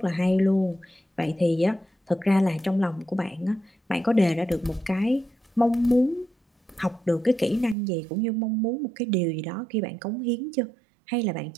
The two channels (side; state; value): left; drops out; at 7.8 s